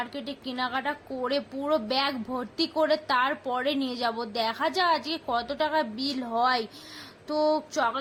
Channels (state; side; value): identical; both; correlation 1.00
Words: কেনাকাটা করে পুরো ব্যাগ ভর্তি করে তারপরে নিয়ে যাব। দেখা যাক আজকে কত টাকা বিল হয়। তো